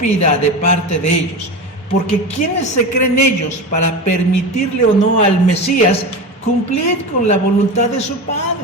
de parte de ellos. Porque ¿quiénes se creen ellos para permitirle o no al Mesías cumplir con la voluntad de su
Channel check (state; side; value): normal; both; correlation 0.25